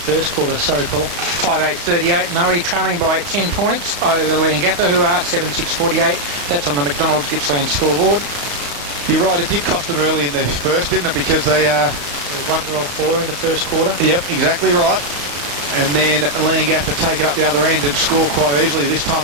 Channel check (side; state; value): left; late; 35 ms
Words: quarter. Sorry, Paul. 5-8-38 Moe trailing by 10 points over Leongatha, who are 7-6-48. That's on the McDonald's Gippsland scoreboard. You're right, it did cost them early in the first, didn't it? Because they 1-4 in the first quarter. Yep, exactly right. And then Leongatha take it up the other end and score quite easily. This time